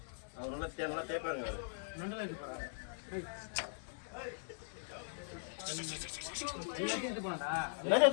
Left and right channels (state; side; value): silent; right; digital silence